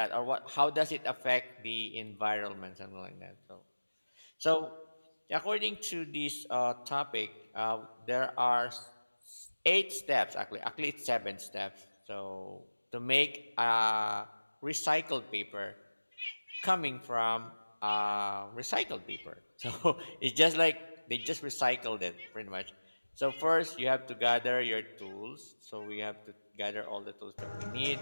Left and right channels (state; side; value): inverted; both; correlation -1.00